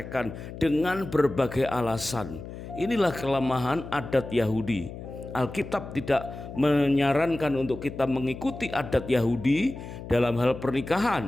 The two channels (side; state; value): left; noise; hum, 11 dB below the sound